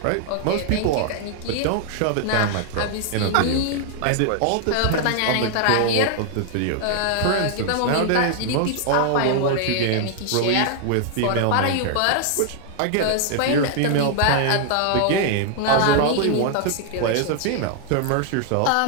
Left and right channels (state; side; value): different; both; correlation 0.00